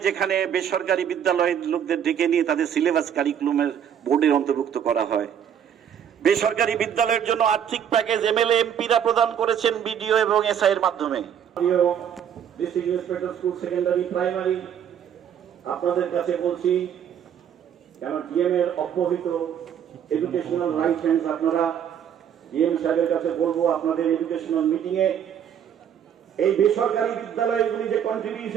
যেখানে বেসরকারি বিদ্যালয়ের লোকদের ডেকে নিয়ে তাদের সিলেবাস কারিকুলামের বোর্ডের অন্তর্ভুক্ত করা হয়, বেসরকারি বিদ্যালয়ের জন্য আর্থিক প্যাকেজ এমএলএ এমপিরা প্রদান করেছেন বিডিও এবং এসআই এর মাধ্যমে। District inspector school secondary primary আপনাদের কাছে বলছি, কেন ডিএম এর অব্যবহৃত এডুকেশনাল রাইট হ্যান্ডস, আপনারা ডিএম সাহেবের কাছে বলবো আপনাদের এডুকেশনাল মিটিং এ এই বেসরকারি বিদ্যালয়গুলি যে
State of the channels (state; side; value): quieter; left; 8.9 dB